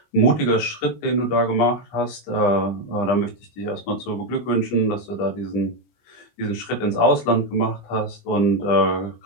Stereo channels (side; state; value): right; late; 25 ms